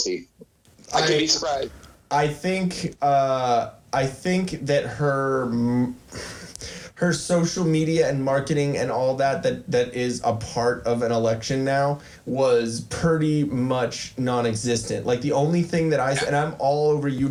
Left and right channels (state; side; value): identical; both; correlation 1.00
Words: I could be surprised. I think that her social media and marketing and all that is a part of an election now was pretty much non-existent. The only thing that and I'm all over